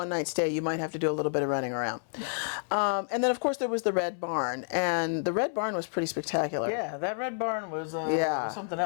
stay, you might have to do a little bit of running around. And then, of course, there was the Red Barn, and the Red Barn was pretty spectacular. Yeah, that Red Barn was something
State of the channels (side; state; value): right; silent; 58 dB below the other